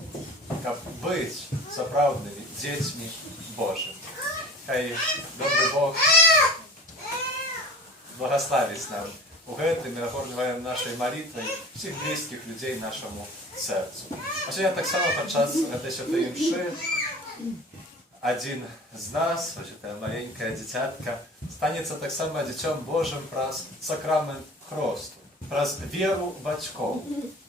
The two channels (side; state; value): both; normal; correlation 0.40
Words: як бути справжніми дітьми Божими. Хай добрий Бог благословить нам у гэтым і наповнюємо нашою молитвою всіх близьких людей нашому серцю. А сьогодні так само підчас цієї святої мши один з нас, ось ця маленька дитятка, станеться так само дитям Божим праз сакрамент хресту, праз віру батьків,